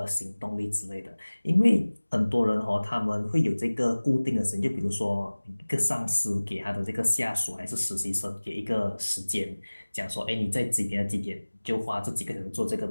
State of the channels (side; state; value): both; inverted; correlation -1.00